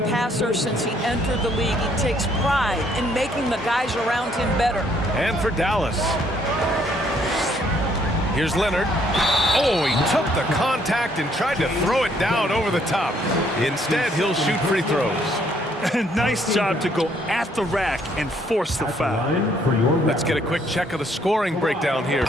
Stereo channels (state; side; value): normal; both; correlation 0.67